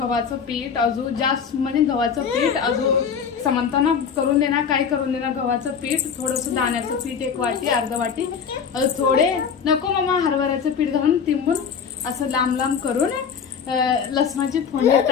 पीठ, अजून जास्त म्हणजे गव्हाचं पीठ अजून समंताना करून देणार. काय करून देणार. गव्हाचं पीठ, थोडंसं दाण्याचं पीठ 1 वाटी, अर्धा वाटी, थोडे नको मामा हरभऱ्याचं पीठ घालून तिंबून असं लांब लांब करून लसणाची फोडणी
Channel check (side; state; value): right; quieter; 6.7 dB